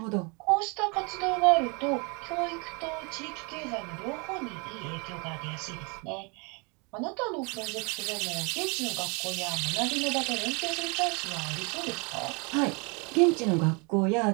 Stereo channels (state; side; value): quieter; left; 32.0 dB